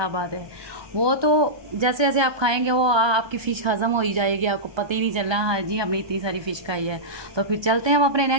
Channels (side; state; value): left; late; 1.3 ms